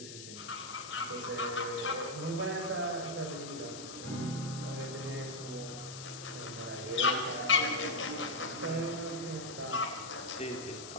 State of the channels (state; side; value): noise; left; hiss, 11 dB below the sound